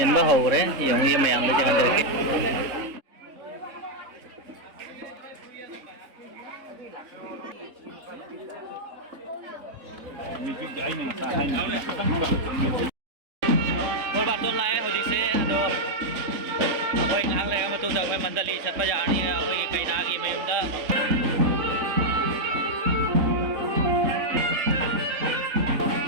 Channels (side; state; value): left; late; 3.6 ms